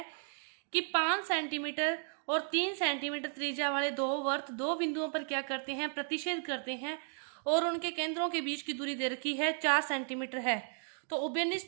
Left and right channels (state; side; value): silent; left; 55 dB below the other